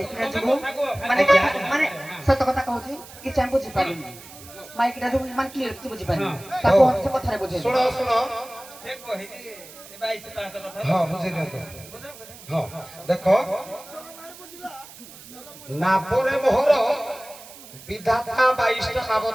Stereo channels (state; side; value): noise; right; hiss, 18 dB below the sound